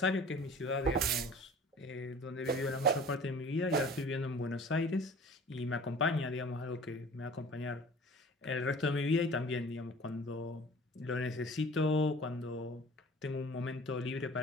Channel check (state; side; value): normal; both; correlation 0.45